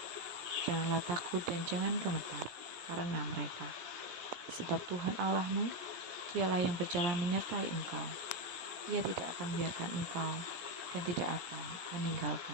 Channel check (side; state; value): left; late; 17 ms